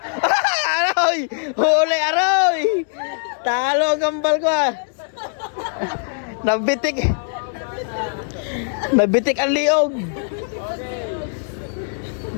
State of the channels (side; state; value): right; silent; digital silence